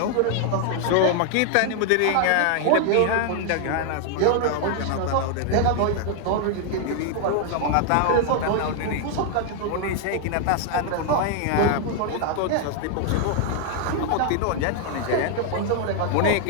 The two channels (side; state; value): both; different; correlation 0.00